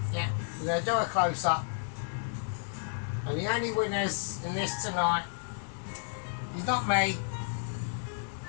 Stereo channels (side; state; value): right; silent; digital silence